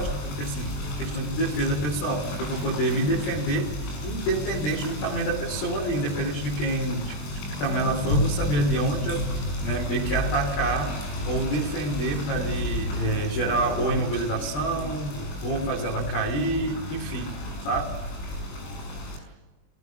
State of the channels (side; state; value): right; late; 21 ms